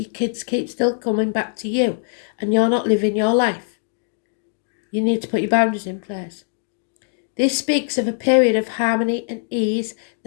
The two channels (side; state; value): right; silent; digital silence